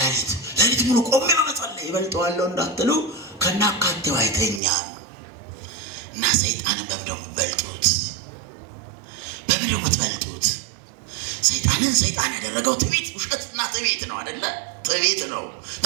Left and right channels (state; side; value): drops out; left; at 4.6 s